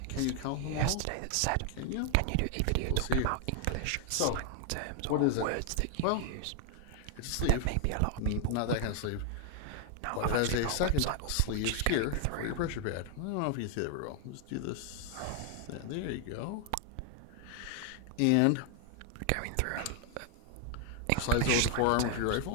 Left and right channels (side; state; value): both; different; correlation 0.00